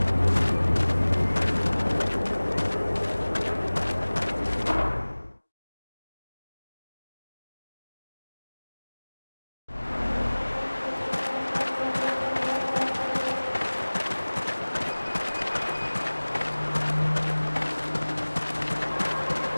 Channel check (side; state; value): both; inverted; correlation -1.00